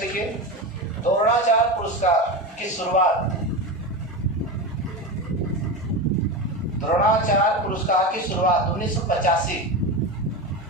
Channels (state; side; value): normal; both; correlation 0.21